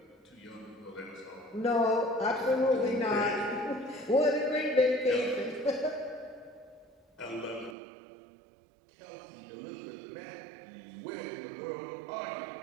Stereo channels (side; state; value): left; drops out; at 7.8 s